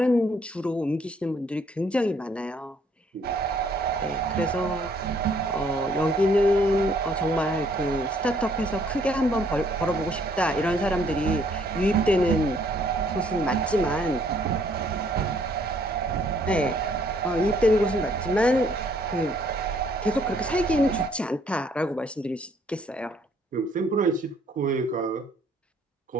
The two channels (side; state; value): both; normal; correlation 0.64